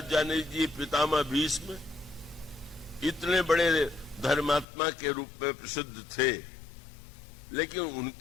जाने लीजिए पितामह भीष्म इतने बड़े धर्मात्मा के रूप में प्रसिद्ध थे, लेकिन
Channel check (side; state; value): right; drops out; at 4.7 s